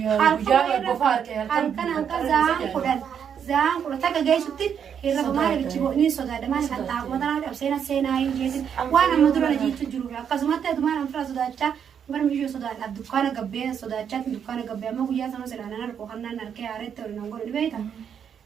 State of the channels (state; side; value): quieter; left; 8.0 dB